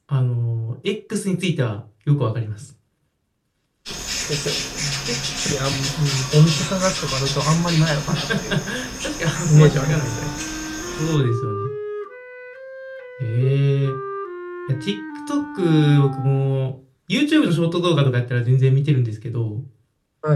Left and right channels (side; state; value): both; identical; correlation 1.00